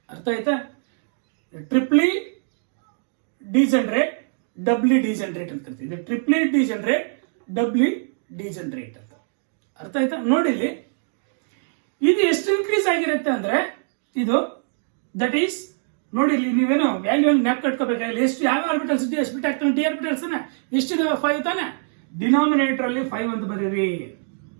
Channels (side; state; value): left; silent; digital silence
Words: ಅರ್ಥ ಆಯ್ತಾ? ಟ್ರಿಪ್ಲಿ ಡಿಜನರೇಟ್, ಡಬ್ಲಿ ಡಿಜನರೇಟ್ ಅಂತ ಕರಿತೀವಿ. ಟ್ರಿಪ್ಲಿ ಡಿಜನರೇಟ್, ಡಬ್ಲಿ ಡಿಜನರೇಟ್ ಅಂತ. ಅರ್ಥ ಆಯ್ತಾ? ನೋಡಿಲಿ, ಇದು ಎಷ್ಟು ಇನ್ಕ್ರೀಸ್ ಆಗಿರುತ್ತೆ ಅಂದ್ರೆ ಇದು ದಟ್ ಈಸ್ ನೋಡಿ ಇಲ್ಲಿ ನೀವೇನು ವ್ಯಾಲ್ಯೂ ನ್ಯಾಪ್ ಕಟ್ಕೋಬೇಕಾಗಿಲ್ಲ. ಎಷ್ಟು ಯಾವ ಆರ್ಬಿಟಲ್ಸ್ ಡಿ ಸ್ಪ್ಲಿಟ್ ಆಗ್ತಾನೆ, ಡಿ ಆರ್ಬಿಟಲ್ಸ್ ಎಷ್ಟಿದಾವೆ 5 ತಾನೆ. ಡಿನಾಮಿನೇಟರ್ ಅಲ್ಲಿ 5 ಅಂತ ಬರೀರಿ.